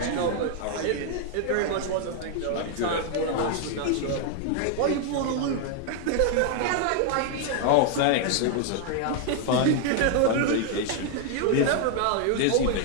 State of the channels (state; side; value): different; both; correlation 0.00